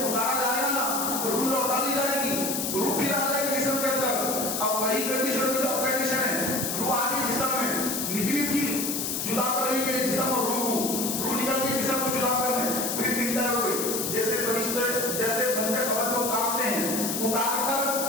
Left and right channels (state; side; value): noise; left; hiss, 2 dB below the sound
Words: جائے گا نا تو روح لوٹا دی جائے گی، روح پھر آ جائے گی جسم کے اندر. اب وہی کنڈیشن جو اب کنڈیشن ہے، روح آ گئی جسم میں، نکلی تھی جدا کرنے کے لیے جسم اور روح کو، روح نکل کے جسم کو جدا کرنے، پھر انٹر ہو گئی. جیسے فرشتے جیسے بندے خبر میں اتارتے ہیں، اتار کر